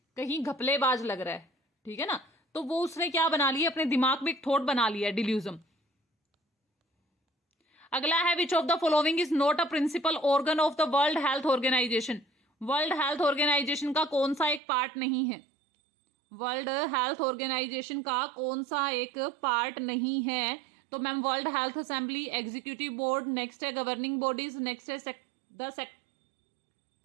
कहीं घपलेबाज लग रहा है, ठीक है ना। तो वो उसने क्या बना लिया? अपने दिमाग में एक थॉट बना लिया, डिल्यूजन। अगला है which of the following is not a principal organ of the world health organisation. World health organisation का कौन सा एक पार्ट नहीं है? वर्ल्ड हेल्थ ऑर्गेनाइजेशन का कौन सा एक पार्ट नहीं है? तो ma'am world health assembly, executive board, next है गवर्निंग बॉडीज, नेक्स्ट है द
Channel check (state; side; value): drops out; left; at 14.6 s